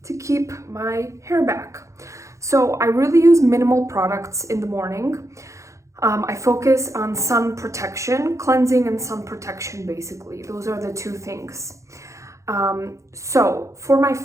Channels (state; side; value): late; left; 0.15 ms